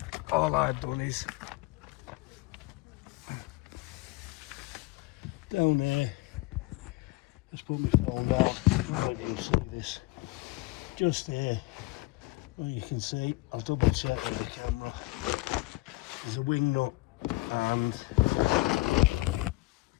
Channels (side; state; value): right; quieter; 21.8 dB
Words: all I've done is down there, let's put my phone on, let you see this, just there, well you can see, I'll double check with the camera, there's a wing nut, and